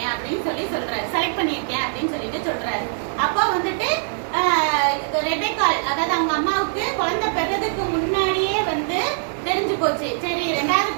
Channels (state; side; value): silent; left; 64 dB below the other